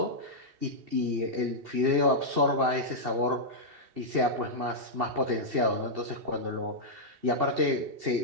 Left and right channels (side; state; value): left; late; 2.7 ms